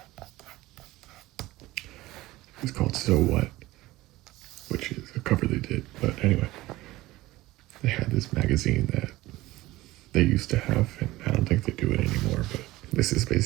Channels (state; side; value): quieter; left; 18.2 dB